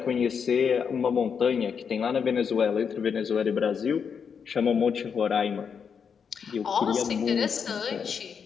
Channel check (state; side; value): quieter; right; 6.7 dB